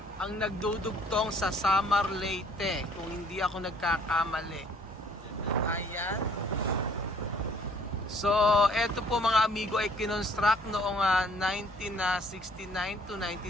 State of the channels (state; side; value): normal; both; correlation 0.59